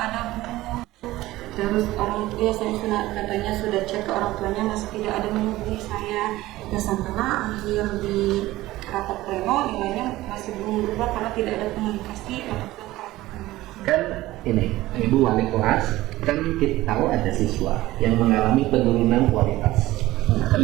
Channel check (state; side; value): quieter; left; 17.2 dB